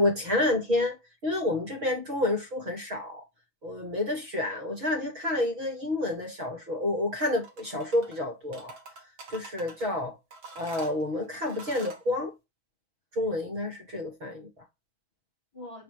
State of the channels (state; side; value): late; left; 6.2 ms